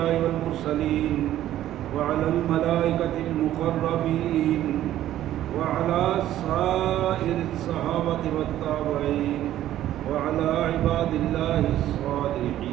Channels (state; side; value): quieter; left; 12.9 dB